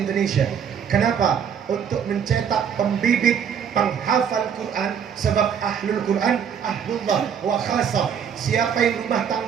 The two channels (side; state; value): left; quieter; 7.8 dB